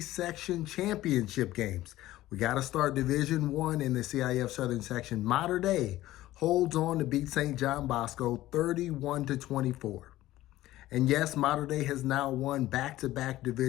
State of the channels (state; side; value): quieter; right; 15.7 dB